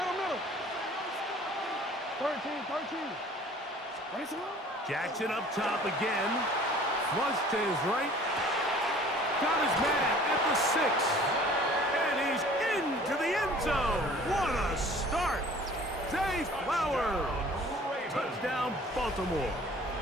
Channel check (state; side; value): normal; both; correlation 0.50